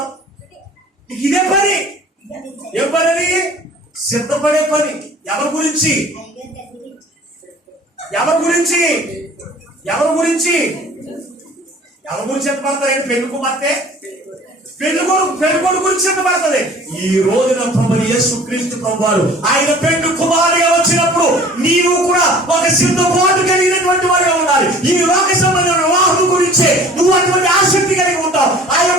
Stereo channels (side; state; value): both; normal; correlation 0.48